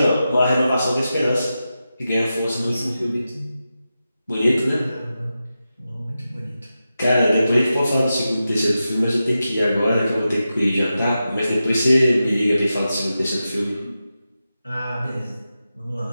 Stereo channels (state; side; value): inverted; both; correlation -0.91